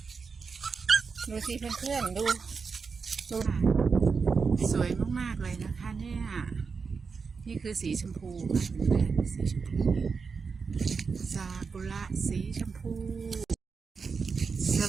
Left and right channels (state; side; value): quieter; left; 5.2 dB